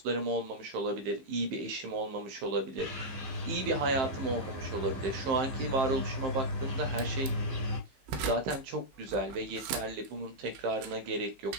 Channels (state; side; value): late; left; 15 ms